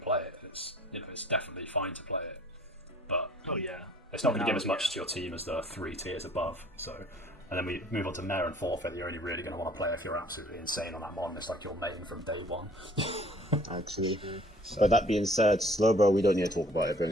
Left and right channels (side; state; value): both; normal; correlation 0.54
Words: it. It's it's definitely fine to play it. But it's not going to give as much to your team as the 3 tiers above. So, and then we move on to Mare and Forfeit. You're only really going to want to play if you're absolutely insane on that mon. It's like your main from day one. Actually, but that being said, Slowbro, we don't need to talk about it. Bring